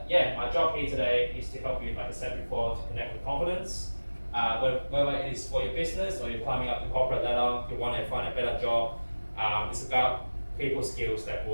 yeah, my job here today is to help you, like I said before, to connect with confidence. Whether it is for your business or you're climbing up the corporate ladder, you want to find a better job, it's about people skills that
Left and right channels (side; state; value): both; inverted; correlation -1.00